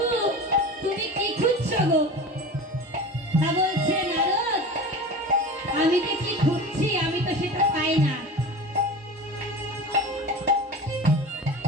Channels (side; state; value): both; normal; correlation 0.33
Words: তুমি কি খুঁজছো গো? তা বলছে, নারদ আমি যে কি খুঁজছি আমি তো সেটা পাই না।